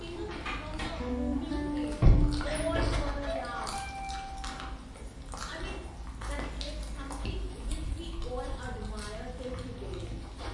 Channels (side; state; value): both; identical; correlation 1.00